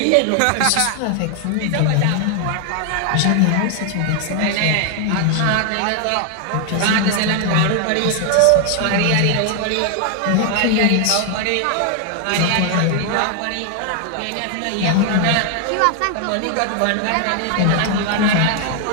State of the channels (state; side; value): different; both; correlation 0.00